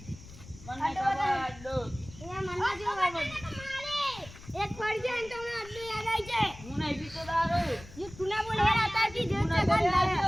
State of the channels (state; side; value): noise; left; rumble, 17 dB below the sound